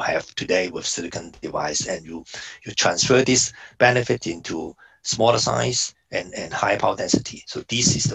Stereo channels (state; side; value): identical; both; correlation 1.00